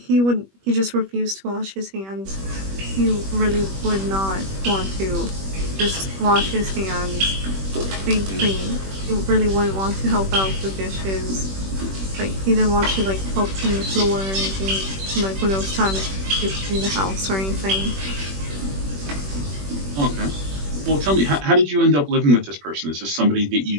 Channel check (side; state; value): left; late; 21 ms